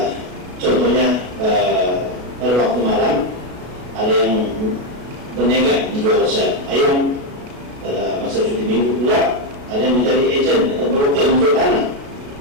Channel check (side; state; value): left; late; 33 ms